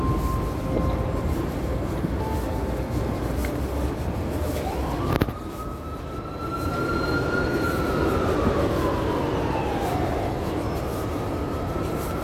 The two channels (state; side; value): identical; both; correlation 1.00